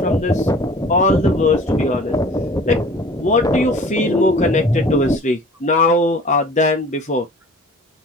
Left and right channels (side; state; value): both; normal; correlation 0.45